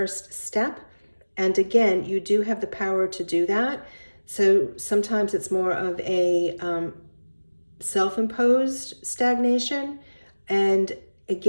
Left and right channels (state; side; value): inverted; both; correlation -1.00